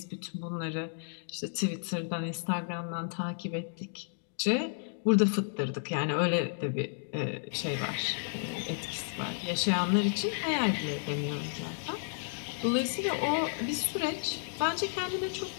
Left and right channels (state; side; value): silent; right; digital silence